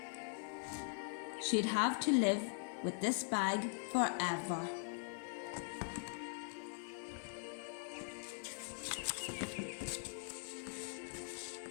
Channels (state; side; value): silent; right; digital silence